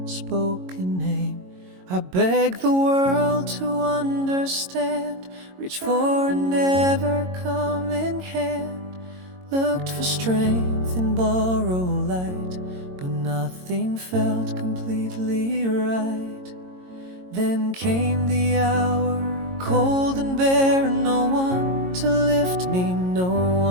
spoken name. I begged the world to understand, reach for and never come in hand. Looked for strength in borrowed light, but nothing felt completely right. Then came the hour, cold and bare, no one to lift me, no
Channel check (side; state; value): left; late; 22 ms